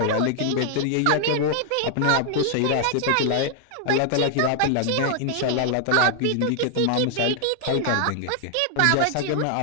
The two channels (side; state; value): both; different; correlation 0.00